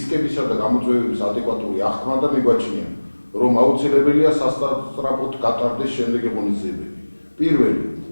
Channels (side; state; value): both; inverted; correlation -1.00